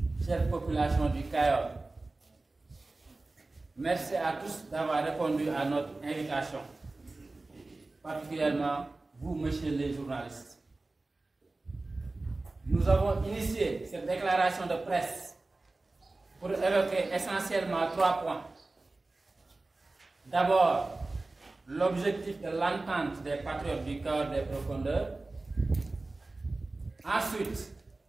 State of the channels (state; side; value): quieter; left; 3.2 dB